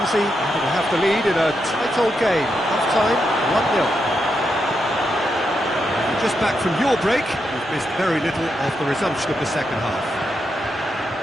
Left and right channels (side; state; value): both; normal; correlation 0.83